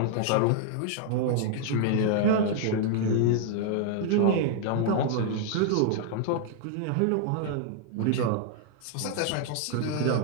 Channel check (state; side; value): different; both; correlation -0.01